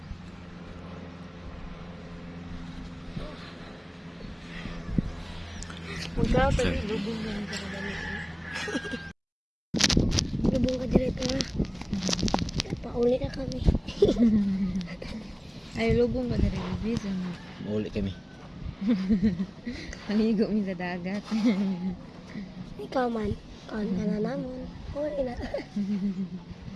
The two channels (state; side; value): identical; both; correlation 1.00